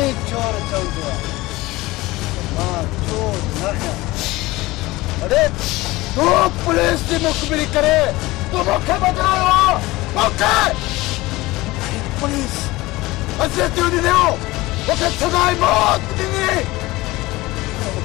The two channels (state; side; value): quieter; right; 19.9 dB